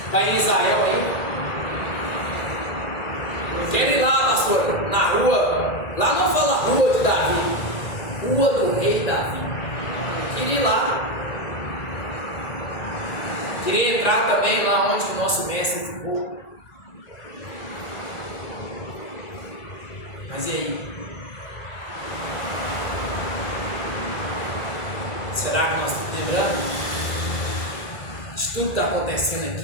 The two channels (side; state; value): right; late; 1.9 ms